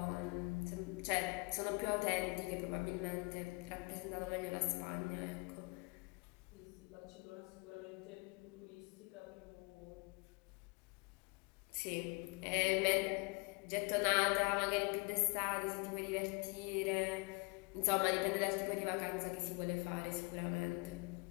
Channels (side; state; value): right; quieter; 29.7 dB